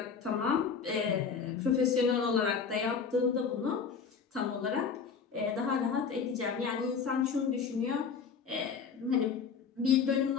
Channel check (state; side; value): quieter; right; 6.0 dB